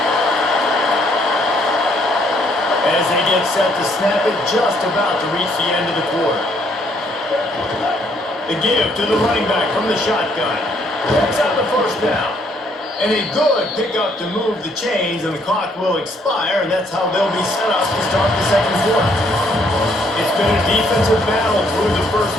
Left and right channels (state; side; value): normal; both; correlation 0.68